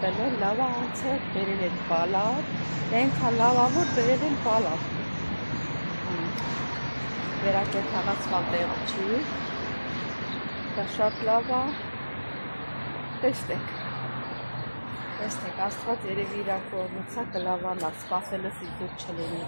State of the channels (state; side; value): inverted; both; correlation -1.00